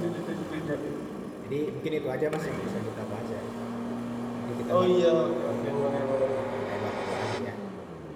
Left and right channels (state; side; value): identical; both; correlation 1.00